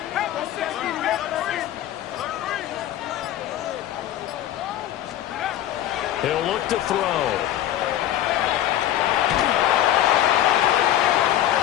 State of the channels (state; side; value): quieter; right; 12.3 dB